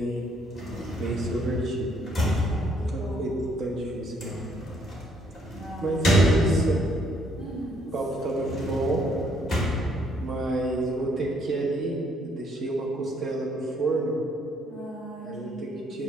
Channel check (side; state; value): both; normal; correlation 0.68